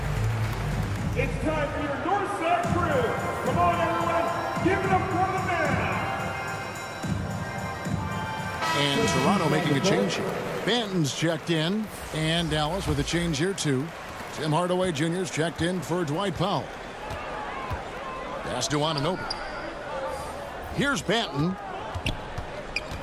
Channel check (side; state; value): both; identical; correlation 1.00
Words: It's time for your North Side Crew. Come on, everyone, give it up for the man. And Toronto making a change here. Banton's checked in. And Dallas with a change here, too. Tim Hardaway Jr.'s checked in for Dwight Powell. Pass to Anunoby. Here's Banton.